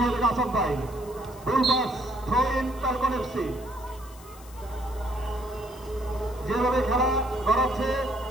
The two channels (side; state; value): left; noise; hiss, 22 dB below the sound